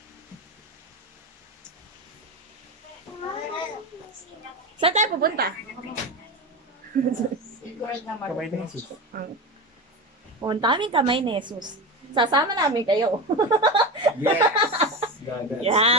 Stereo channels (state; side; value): normal; both; correlation 0.22